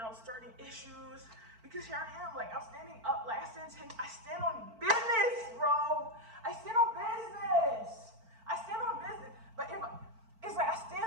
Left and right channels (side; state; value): left; late; 4.5 ms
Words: starting issues. Because here I am, like, I'm standing up, like, I stand on business, bro. I stand on business. But it's like I stand